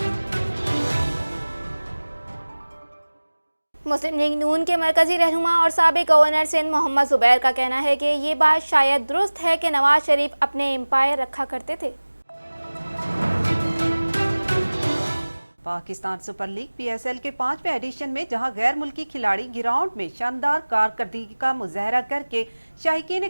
मुस्लिम लीग नून के मरकजी रहनुमा और साबिक गवर्नर सिंध मोहम्मद जुबैर का कहना है कि ये बात शायद दुरुस्त है कि नवाज शरीफ अपने एम्पायर रखा करते थे। पाकिस्तान सुपर लीग PSL के 5वें एडिशन में जहां गैर मुल्की खिलाड़ी ग्राउंड में शानदार कारकर्दगी का मुजाहरा करके शायकीन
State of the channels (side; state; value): both; inverted; correlation -1.00